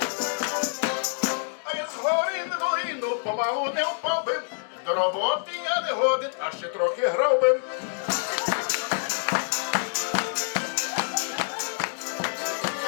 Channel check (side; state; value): right; silent; digital silence